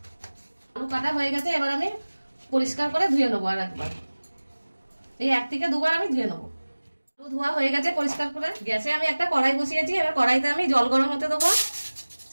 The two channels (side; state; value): both; inverted; correlation -1.00